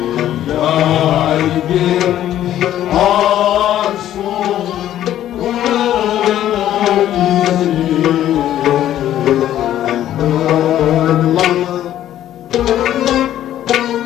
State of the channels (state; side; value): quieter; right; 12.1 dB